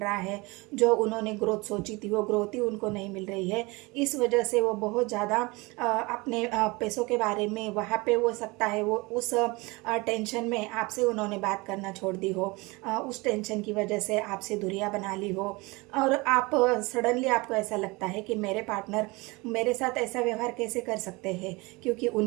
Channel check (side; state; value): left; quieter; 24.8 dB